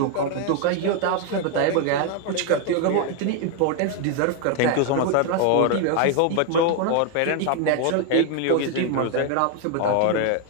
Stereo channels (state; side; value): different; both; correlation 0.01